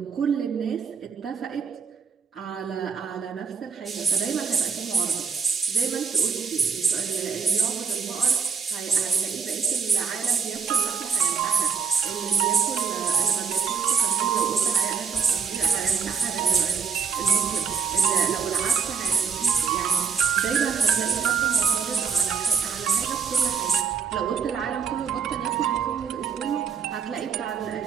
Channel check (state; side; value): quieter; left; 6.2 dB